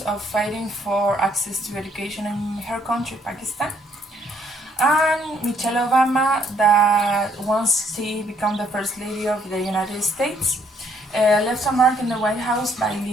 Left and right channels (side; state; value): both; normal; correlation 0.67